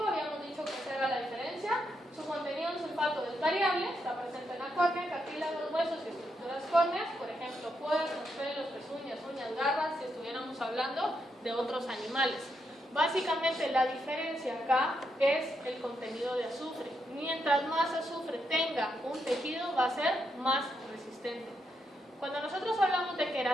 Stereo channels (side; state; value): both; normal; correlation 0.81